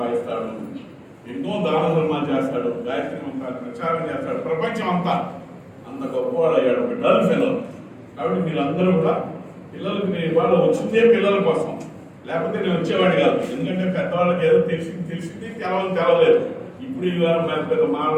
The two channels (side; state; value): both; identical; correlation 1.00